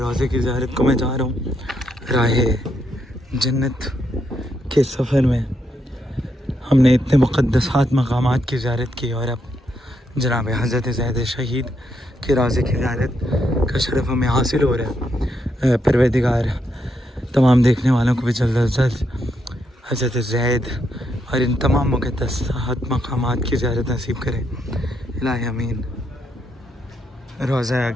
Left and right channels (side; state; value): both; normal; correlation 0.79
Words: کی زیارت کو میں جا رہا ہوں۔ راہ جنت کے سفر میں ہم نے اتنے مقدسات مقامات کی زیارت کی، اور اب جناب حضرت زید شہید کے روضے کی زیارت کا شرف ہمیں حاصل ہو رہا ہے۔ پروردگار تمام دیکھنے والوں کو بھی جلد از جلد حضرت زید اور ان تمام مقدسات مقامات کی زیارت نصیب کرے۔ الہی امین۔ روضہ